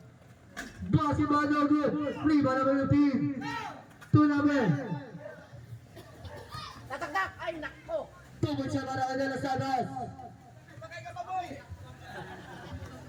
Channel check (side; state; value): both; identical; correlation 1.00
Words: Basket ba no good? Rebound number 15. 2 number. Tatagdak! Ay, nako! 2 points siya para kay De Los Santos.